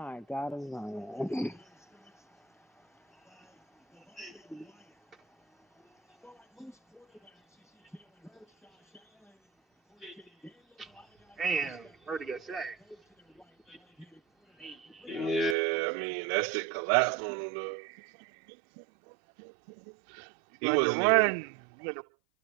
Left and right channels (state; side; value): drops out; left; at 15.6 s